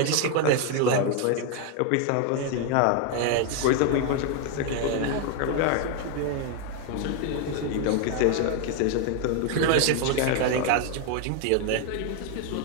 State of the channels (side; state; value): both; different; correlation 0.01